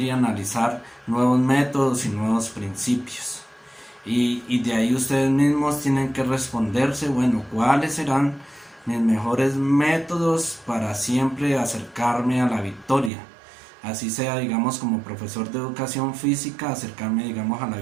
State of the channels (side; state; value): left; drops out; at 13.1 s